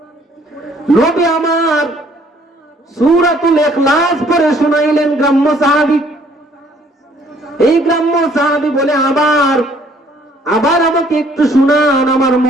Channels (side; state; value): both; normal; correlation 0.61